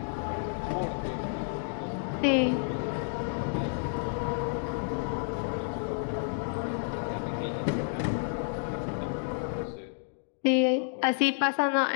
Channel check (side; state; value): right; silent; digital silence